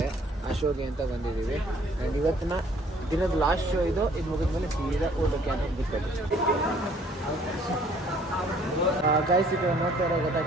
ಆ ಶೋಗೆ ಅಂತ ಬಂದಿದ್ದೀವಿ. ಆ್ಯಂಡ್ ಇವತ್ತಿನ ದಿನದ ಲಾಸ್ಟ್ ಶೋ ಇದು ಮುಗಿದ್ಮೇಲೆ ಸೀದಾ ಊಟಕ್ಕೆ ಅಂತ ಬಿಡ್ಬೇಕು. ಗೈಸ್, ಈಗ ನೋಡ್ತಾ ಇರೋ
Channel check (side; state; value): both; normal; correlation 0.59